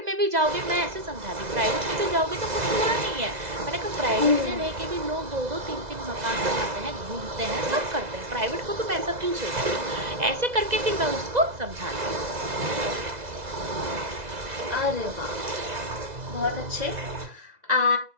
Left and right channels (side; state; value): left; late; 2.0 ms